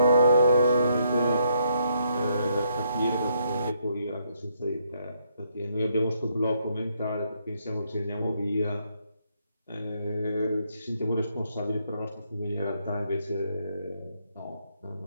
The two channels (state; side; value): inverted; both; correlation -0.73